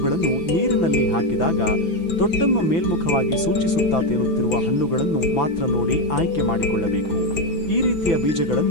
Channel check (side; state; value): right; late; 6.0 ms